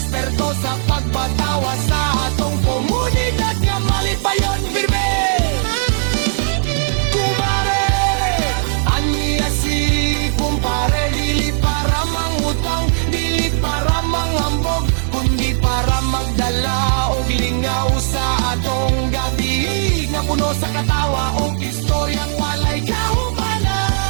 sa pagpatawa sa atong komunidad nga malipayon firme. Kumpare, aniya si kumpare, dili para mangutang, dili para manghambog, kundi para magdala og lingaw sa atong gabi nga puno sa katawa o istoryang walay kahumanan.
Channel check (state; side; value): silent; left; digital silence